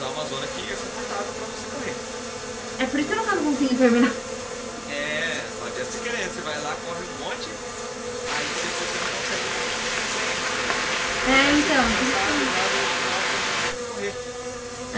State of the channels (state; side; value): identical; both; correlation 1.00